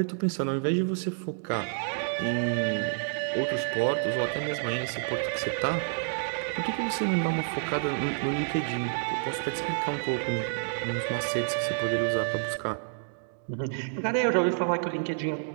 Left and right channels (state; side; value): silent; left; digital silence